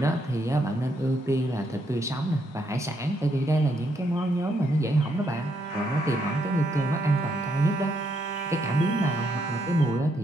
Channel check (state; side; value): normal; both; correlation 0.76